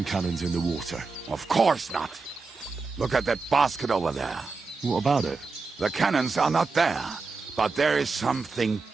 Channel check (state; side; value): quieter; left; 4.2 dB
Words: cannons in the water. Of course not. Look at that basket over there. What about it? The cannons are not there, but there is something